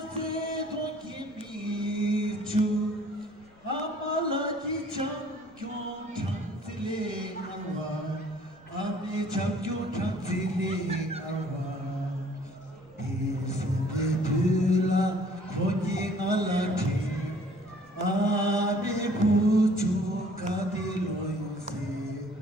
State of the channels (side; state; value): left; noise; rumble, 29 dB below the sound